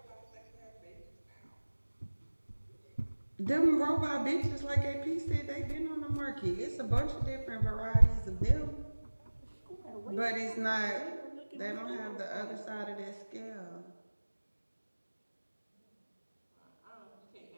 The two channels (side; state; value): both; inverted; correlation -1.00